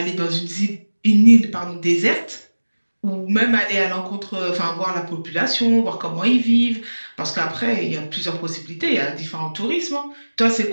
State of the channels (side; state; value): both; inverted; correlation -1.00